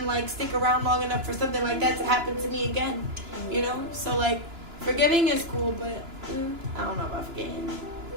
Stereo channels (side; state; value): left; late; 2.9 ms